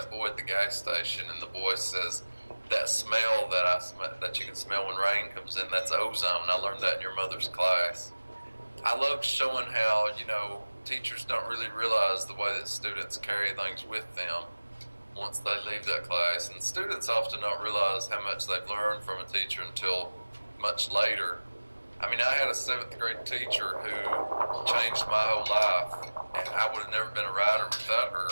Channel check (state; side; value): inverted; both; correlation -1.00